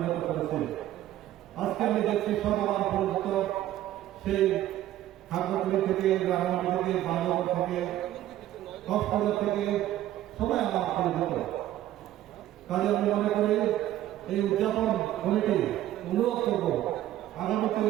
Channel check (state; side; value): quieter; left; 13.4 dB